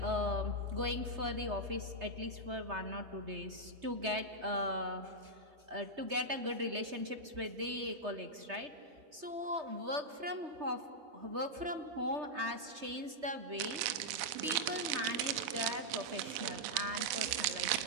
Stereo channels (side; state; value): left; late; 3.3 ms